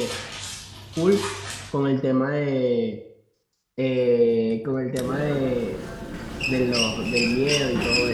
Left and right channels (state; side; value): identical; both; correlation 1.00